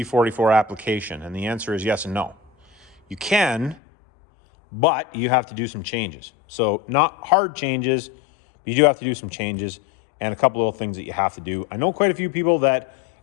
application? And the answer is yes and no. You can, but you have to do some changes. So not hard changes, but you do have to do some changes and a couple little things that you have to do. I know quite a few people that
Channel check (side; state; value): right; drops out; at 3.8 s